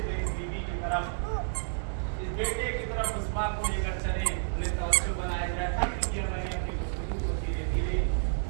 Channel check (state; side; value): silent; left; digital silence